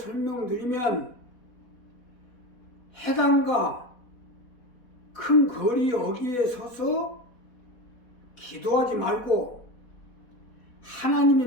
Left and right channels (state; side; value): late; right; 4.1 ms